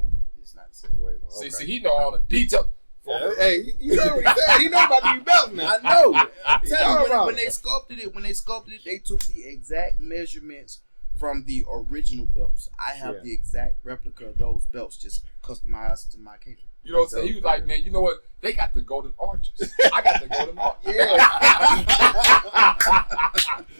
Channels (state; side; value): inverted; both; correlation -1.00